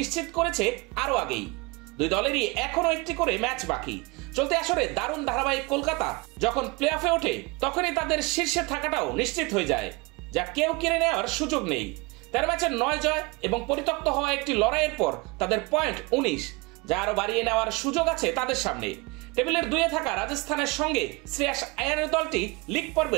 করেছে আরো আগেই। 2 দলেরই এখনো একটি করে ম্যাচ বাকি। চলতি আসরে দারুণ ধারাবাহিক কলকাতা যখন প্লে অফে ওঠে তখনই তাদের শীর্ষে থাকাটাও নিশ্চিত হয়ে যায়, যা কেউ কেড়ে নেওয়ার সুযোগ নেই। 13 ম্যাচের 9 জয় এবং পরিত্যক্ত হওয়া একটি লড়াইয়ের পর তাদের পয়েন্ট 19, যা আরো বাড়িয়ে নেওয়ার সুযোগ আছে তাদের সামনে। টেবিলের 2-এ থাকা রাজস্থানের সঙ্গে শ্রেয়াস আয়ারের দলটি লিগ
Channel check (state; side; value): quieter; left; 26.1 dB